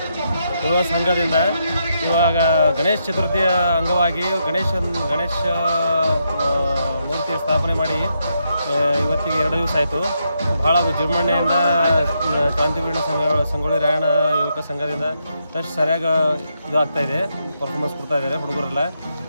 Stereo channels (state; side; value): inverted; both; correlation -0.80